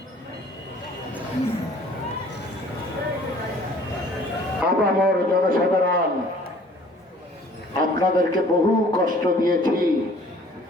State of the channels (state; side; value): normal; both; correlation 0.52